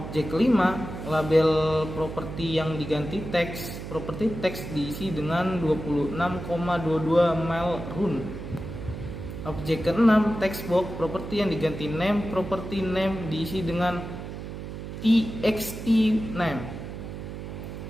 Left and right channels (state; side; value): noise; right; hum, 8 dB below the sound